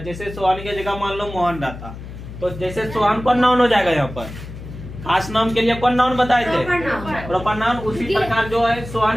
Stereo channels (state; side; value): noise; left; hum, 12 dB below the sound